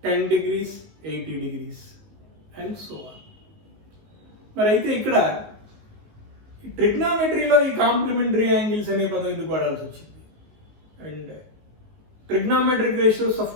10 degrees, 80 degrees. And so on. మరి అయితే ఇక్కడ ట్రిగ్నామెట్రీలో ఈ complementary angles అనే పదం ఎందుకు వాడాల్సి వచ్చింది and trigonometric ratios of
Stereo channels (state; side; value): late; left; 18 ms